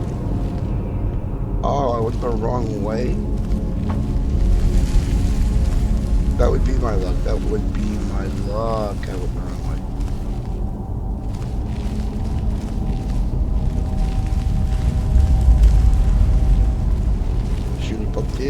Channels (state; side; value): identical; both; correlation 1.00